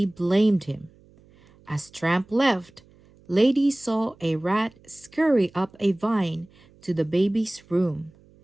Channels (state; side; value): noise; right; hum, 28 dB below the sound